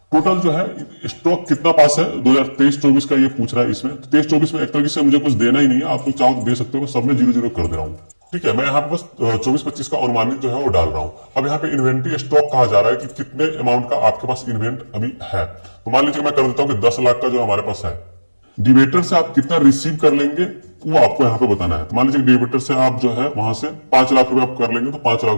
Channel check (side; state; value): both; inverted; correlation -1.00